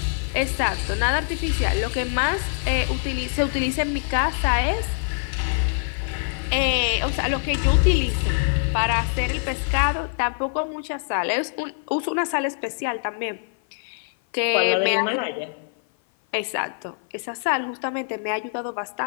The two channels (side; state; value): right; silent; 55 dB below the other